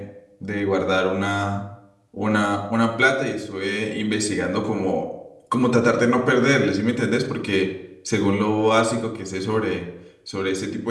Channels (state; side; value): identical; both; correlation 1.00